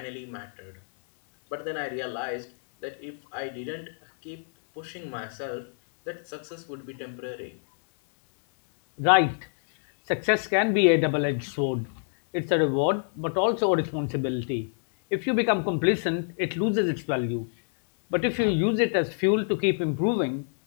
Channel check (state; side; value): silent; right; 60 dB below the other